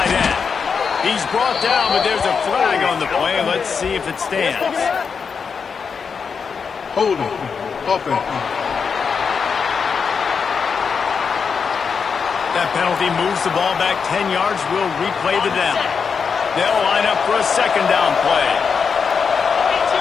end. He's brought down, but there's a flag on the play. Let's see if it stands. Hold him. Open. That penalty moves the ball back 10 yards. We'll replay the down. They'll line up for a 2nd down play.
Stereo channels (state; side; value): quieter; right; 5.9 dB